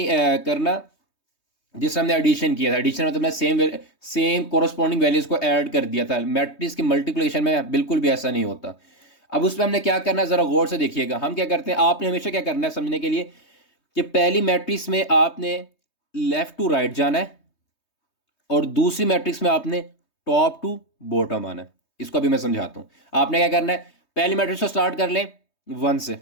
करना जिससे हमने एडिशन किया था। एडिशन मतलब सेम कोरस्पॉन्डिंग वैल्यूज को ऐड कर दिया था। मैट्रिक्स की मल्टीप्लिकेशन में बिल्कुल भी ऐसा नहीं होता। अब उस पर हमने क्या करना है, जरा गौर से देखिएगा। हम क्या करते हैं, आपने हमेशा क्या करना है समझने के लिए कि पहली मैट्रिक्स में आपने लेफ्ट टू राइट जाना है और दूसरी मैट्रिक्स में आपने टॉप टू बॉटम आना है। इसको अभी मैं समझाता हूं। आपने क्या करना है, पहली मैट्रिक्स को स्टार्ट कर लें 1 से।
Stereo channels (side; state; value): right; late; 3.2 ms